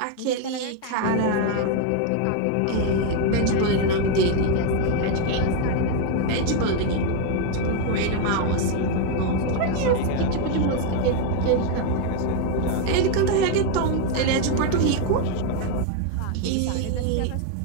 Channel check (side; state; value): both; different; correlation 0.01